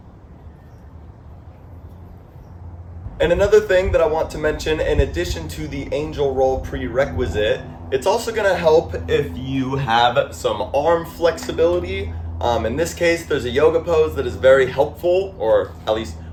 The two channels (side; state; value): both; identical; correlation 1.00